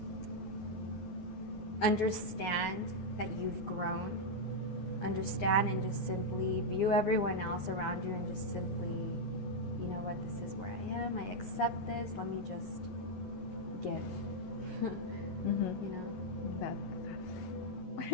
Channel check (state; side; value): late; right; 11 ms